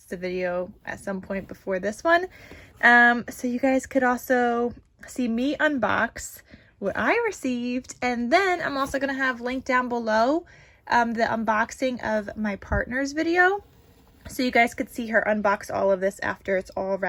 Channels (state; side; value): identical; both; correlation 1.00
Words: the video at some point before this one. So you guys could also see me unbox what I received, and then I'm also going to have linked down below the unboxing of my partner's video, so you guys could see her unbox all of this after it's all